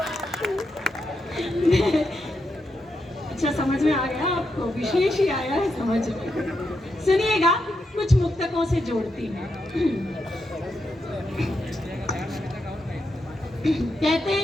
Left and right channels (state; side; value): normal; both; correlation 0.84